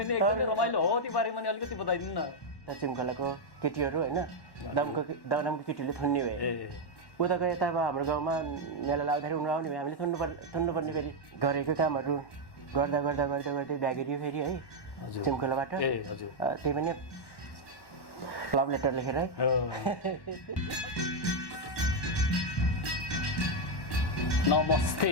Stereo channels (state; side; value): late; right; 1.1 ms